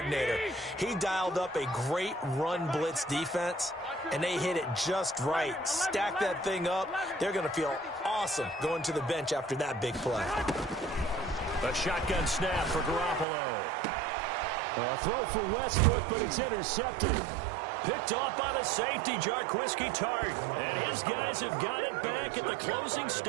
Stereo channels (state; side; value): drops out; left; at 13.2 s